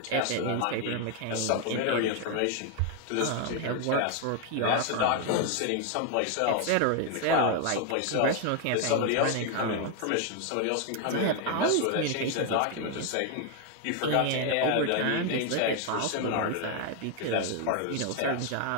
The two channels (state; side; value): different; both; correlation 0.01